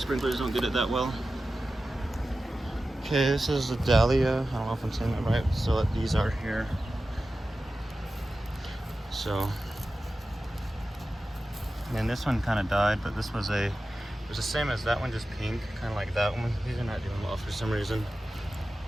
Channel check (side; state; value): both; normal; correlation 0.94